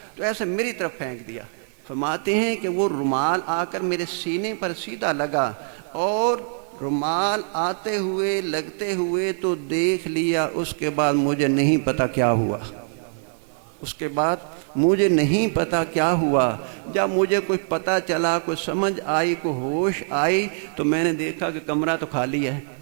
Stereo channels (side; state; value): left; silent; 63 dB below the other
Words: تو ایسے میری طرف پھینک دیا۔ فرماتے ہیں کہ وہ رومال آ کر میرے سینے پر سیدھا لگا، اور رومال آتے ہوئے لگتے ہوئے تو دیکھ لیا، اس کے بعد مجھے نہیں پتا کیا ہوا، جب مجھے کوئی پتہ چلا، کوئی سمجھ آئی، کوئی ہوش آئی، تو میں نے دیکھا کہ کمرہ تو خالی ہے،